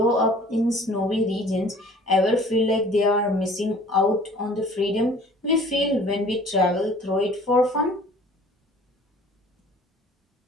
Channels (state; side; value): normal; both; correlation 0.51